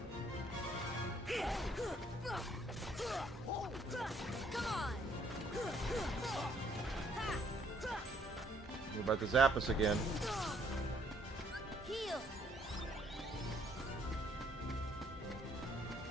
Come on. You're about to zap us again. Heal.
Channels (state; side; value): normal; both; correlation 0.66